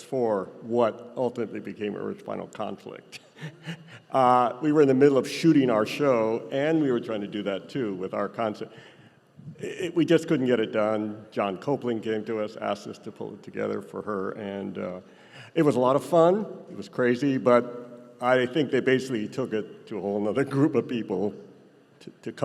for what ultimately became Earth's Final Conflict. We were in the middle of shooting our show, and we were trying to do that too with our concept. We just couldn't get it done. John Copeland came to us, asked us to pull it together for her, and it was a lot of fun. It was crazy, but I think they basically took it to a whole other group of people to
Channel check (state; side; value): identical; both; correlation 1.00